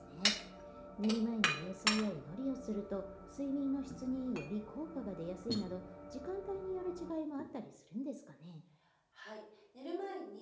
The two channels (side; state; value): both; identical; correlation 1.00